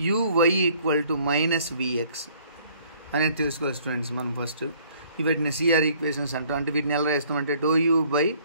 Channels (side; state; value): both; inverted; correlation -0.59